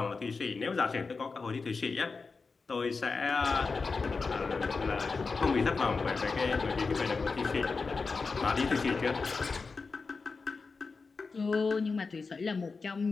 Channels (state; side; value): quieter; right; 4.4 dB